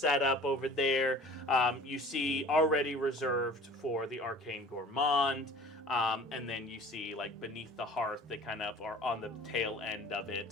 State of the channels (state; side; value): normal; both; correlation 0.45